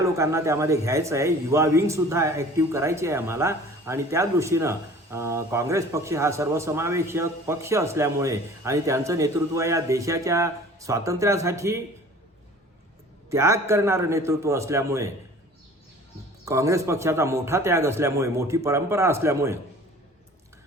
लोकांना त्यामध्ये घ्यायचं आहे. युवा विंग सुद्धा ॲक्टिव्ह करायची आहे आम्हाला. आणि त्या दृष्टीनं काँग्रेस पक्ष हा सर्वसमावेशक पक्ष असल्यामुळे आणि त्यांचं नेतृत्व या देशाच्या स्वातंत्र्यासाठी त्याग करणारं नेतृत्व असल्यामुळे, काँग्रेस पक्षाचा मोठा त्याग असल्यामुळे, मोठी परंपरा असल्यामुळे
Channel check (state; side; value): normal; both; correlation 0.47